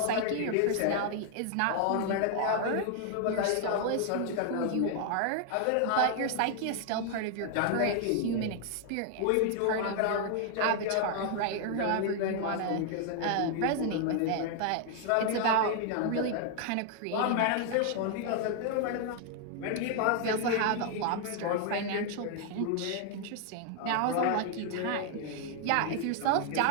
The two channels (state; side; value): different; both; correlation 0.00